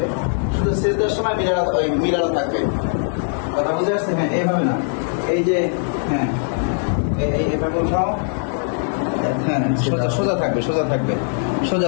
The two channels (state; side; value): silent; right; 65 dB below the other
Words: শুধু শেষের সময় মিলানো থাকবে। কথা বুঝে আসছে? হ্যাঁ, এইভাবে না, এই যে হ্যাঁ এইভাবে উঠাও, হ্যাঁ সোজা থাকবে, সোজা থাকবে, সোজা